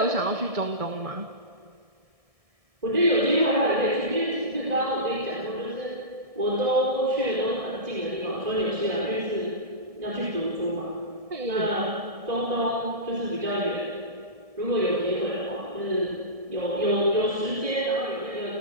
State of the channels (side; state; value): left; late; 1.7 ms